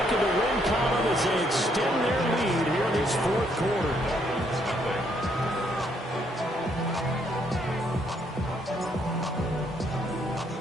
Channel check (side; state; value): both; normal; correlation 0.71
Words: in the win column as they extend their lead here in this fourth quarter.